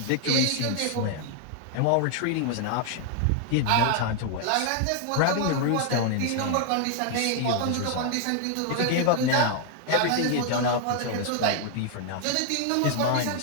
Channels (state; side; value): different; both; correlation 0.00